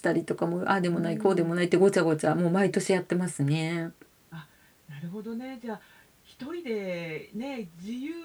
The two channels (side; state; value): both; identical; correlation 1.00